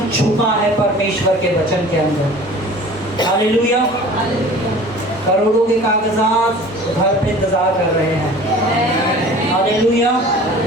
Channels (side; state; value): both; normal; correlation 0.43